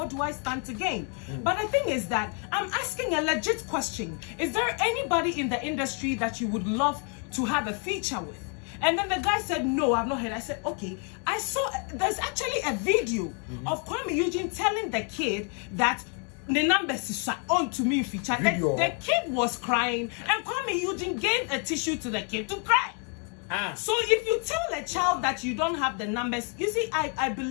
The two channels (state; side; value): quieter; right; 39.4 dB